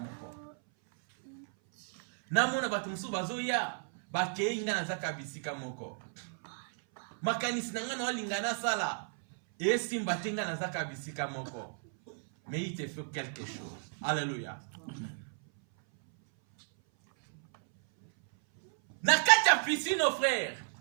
Na mona batu musuba zoya. Bake nga na zaka bisika moko. Makanisi na nga na walingana sala. Et si mbatenga na zaka bisika moko. Mais il te fait quelque chose. Alléluia. Na kati ya piscine, nos frères.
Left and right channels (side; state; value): left; silent; 56 dB below the other